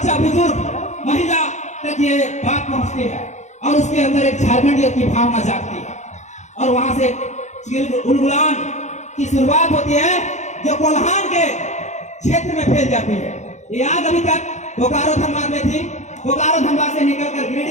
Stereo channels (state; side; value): late; right; 0.34 ms